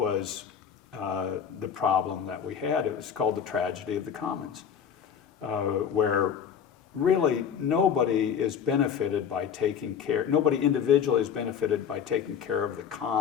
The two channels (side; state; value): right; quieter; 7.8 dB